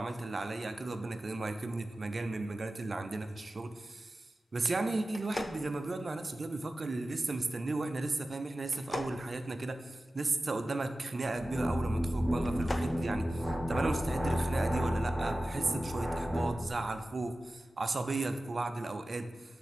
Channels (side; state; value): both; normal; correlation 0.95